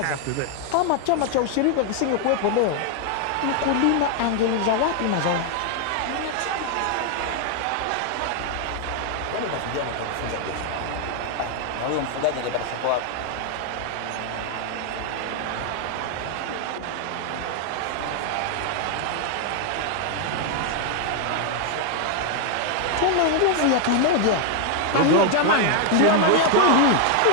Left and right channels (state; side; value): different; both; correlation 0.00